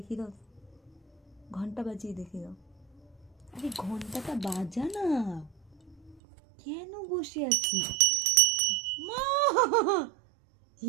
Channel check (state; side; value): drops out; left; at 6.2 s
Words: দাও, ঘন্টা বাজিয়ে দেখিয়ে দাও। আরে ঘন্টাটা বাজা না, কেন বসে আছি মা?